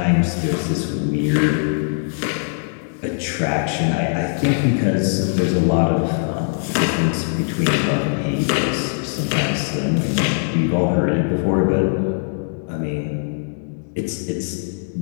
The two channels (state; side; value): silent; right; 65 dB below the other